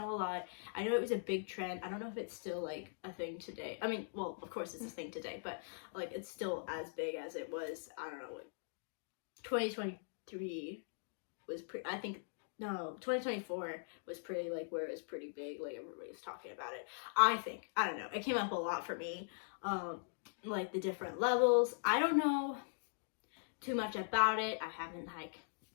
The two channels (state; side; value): silent; right; digital silence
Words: a lot. I know it was a big trend. I don't know if it's still, like, a thing today. I mean, well, of course it's a thing today, but, like, it's still as big as it was, I don't know, like, 2023 was pretty... I think... No, 2024 was pretty, like, where it was pretty big. Like, everybody was talking about it. I think. I don't know. It came up a lot for me. Like, the different levels. I don't know too much about it. I haven't, like,